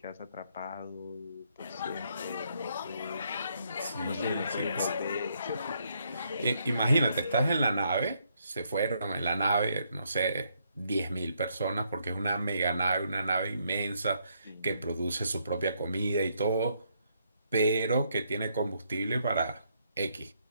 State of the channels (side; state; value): both; inverted; correlation -0.74